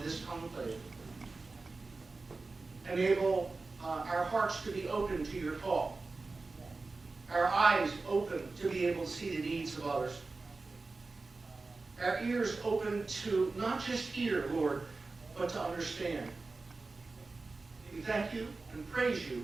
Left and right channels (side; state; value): left; quieter; 3.7 dB